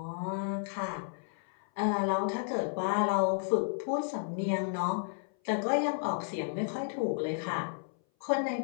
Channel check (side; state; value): right; silent; 56 dB below the other